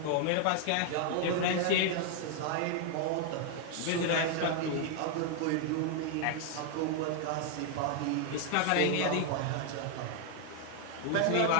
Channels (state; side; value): different; both; correlation 0.00